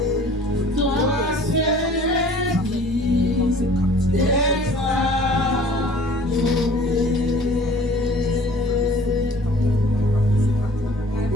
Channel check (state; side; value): normal; both; correlation 0.50